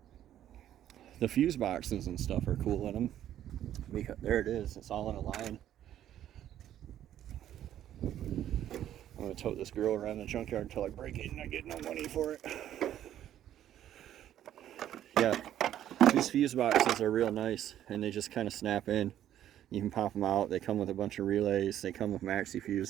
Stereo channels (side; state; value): left; quieter; 11.5 dB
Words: The fuse boxes and stuff are cool in them. Because there it is. It's all in a line. I'm going to tote this girl around the junkyard until I break it and I get no money for it. Yeah, these fuse boxes are real nice and they just kind of snap in. You can pop them out. They come with a bunch of relays. They come with maxi